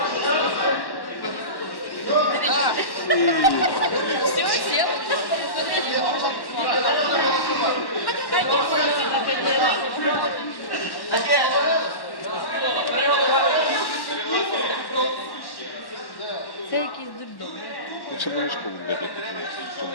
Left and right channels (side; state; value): right; late; 1.1 ms